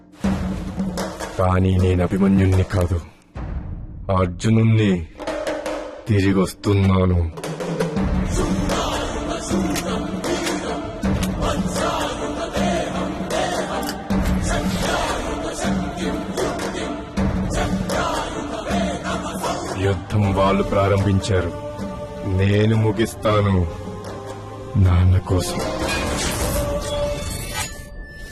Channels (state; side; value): identical; both; correlation 1.00